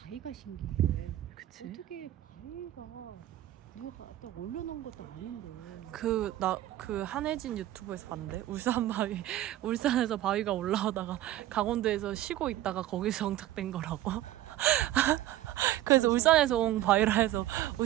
신기해. 그치? 어떻게 바위가 내가 또 올려놓은 것도 아닌데. 그 한혜진 유튜브에서 봤는데 울산 바위 울산에서 바위가 올라오다가 강원도에서 쉬고 있다가 거기서 정착된 거라고. 그래서 울산에서 온 바위라 해서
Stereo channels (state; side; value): quieter; left; 14.0 dB